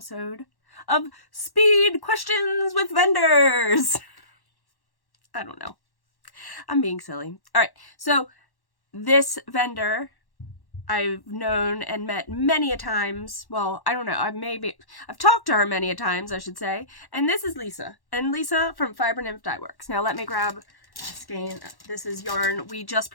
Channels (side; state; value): right; late; 1.1 ms